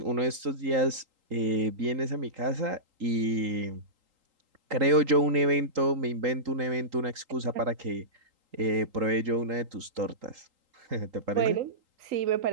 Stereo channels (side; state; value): left; late; 3.8 ms